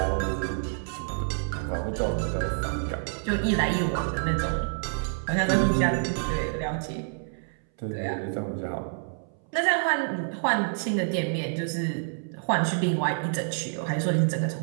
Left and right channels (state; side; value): silent; left; 60 dB below the other